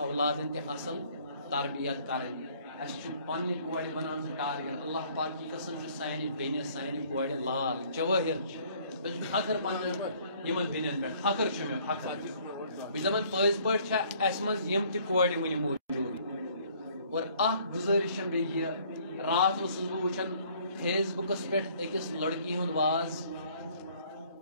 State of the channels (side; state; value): both; inverted; correlation -0.59